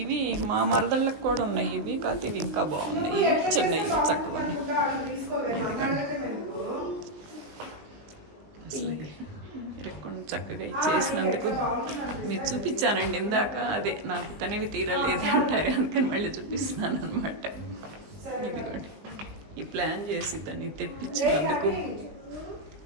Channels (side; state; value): left; late; 20 ms